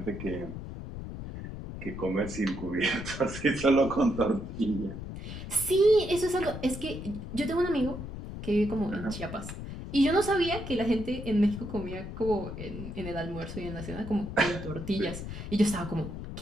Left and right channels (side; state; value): left; noise; rumble, 8 dB below the sound